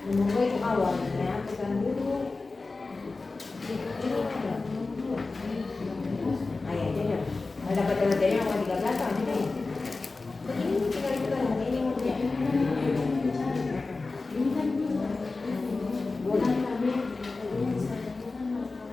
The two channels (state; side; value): quieter; right; 3.7 dB